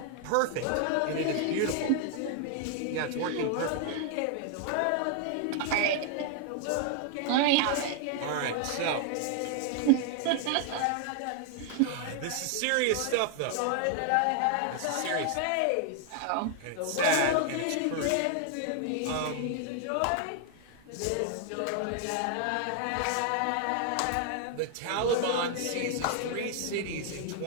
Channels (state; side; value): different; both; correlation 0.00